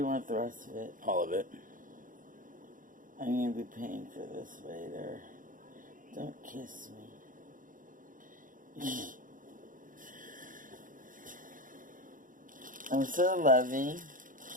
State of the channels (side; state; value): left; late; 0.39 ms